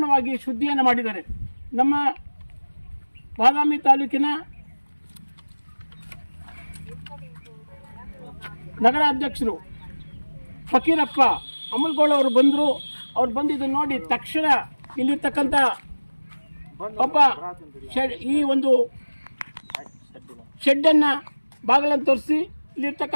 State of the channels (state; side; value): inverted; both; correlation -1.00